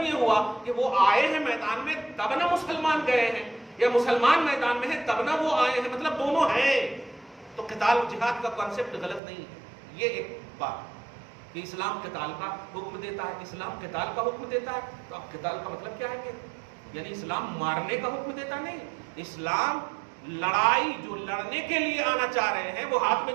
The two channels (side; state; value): left; drops out; at 9.2 s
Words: یہ ہوا کہ وہ آئے ہیں میدان میں تب نہ مسلمان گئے ہیں، یا مسلمان میدان میں ہیں تب نہ وہ آئے ہیں، مطلب دونوں ہیں۔ تو قتال و جہاد کا کانسیپٹ غلط نہیں ہے۔ یہ ایک بات کہ اسلام قتال کا حکم دیتا ہے، اسلام قتال کا حکم دیتا ہے، تو اب قتال کا مطلب کیا ہے کہ یعنی اسلام مارنے کا حکم دیتا نہیں، اسلام لڑائی جو لڑنے کے لیے آنا چاہ رہے ہیں وہ ہاتھ میں